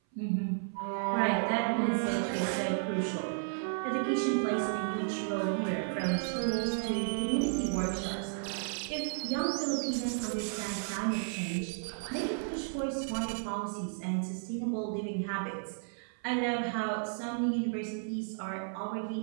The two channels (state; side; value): silent; left; 56 dB below the other